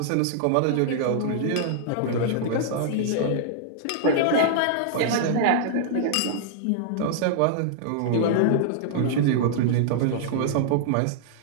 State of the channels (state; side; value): different; both; correlation -0.01